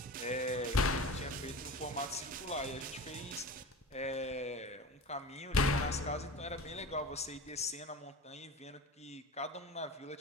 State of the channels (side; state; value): both; normal; correlation 0.32